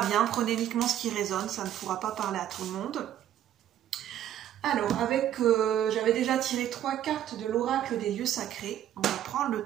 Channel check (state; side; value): quieter; left; 11.4 dB